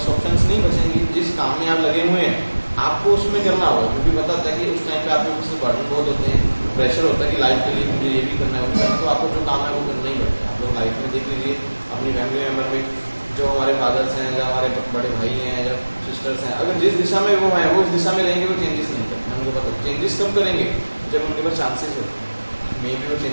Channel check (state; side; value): inverted; both; correlation -1.00